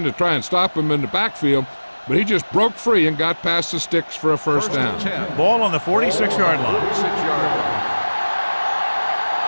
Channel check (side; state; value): both; inverted; correlation -1.00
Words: to try and stop him in the backfield, but he just broke free and got past the sticks for a first down. Ball on the 46-yard line. 46-yard line.